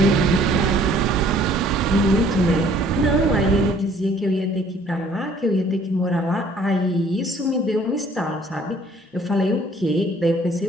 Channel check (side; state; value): both; normal; correlation 0.57